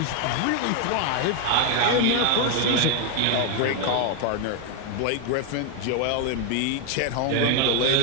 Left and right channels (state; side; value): different; both; correlation 0.01